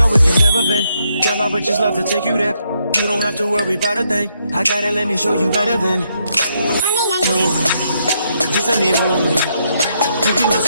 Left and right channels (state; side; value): inverted; both; correlation -0.77